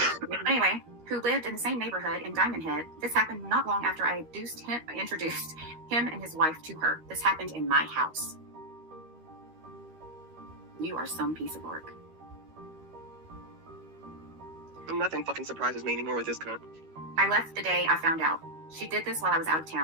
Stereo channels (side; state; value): left; late; 13 ms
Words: Anyway, who lived in the same neighborhood in Diamond Head. This happened not long after I introduced him and his wife to her. This happened in my house. You are some piece of work. Nothing fucking surprises me anymore with this cunt. I left the day I found out. She did this while I was out of